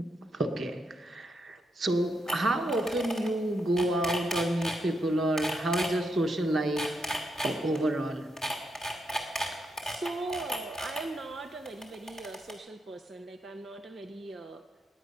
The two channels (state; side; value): normal; both; correlation 0.81